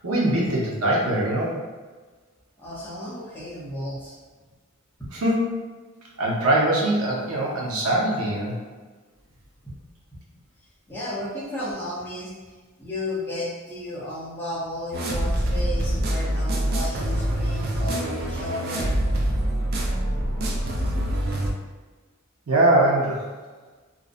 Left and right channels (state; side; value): normal; both; correlation 0.39